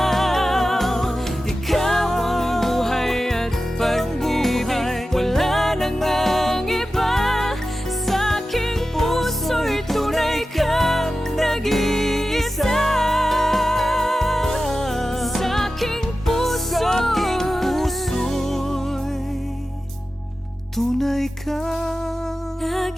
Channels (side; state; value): both; normal; correlation 0.94